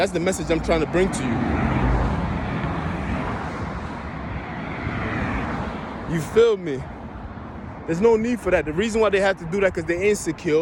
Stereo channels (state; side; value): identical; both; correlation 1.00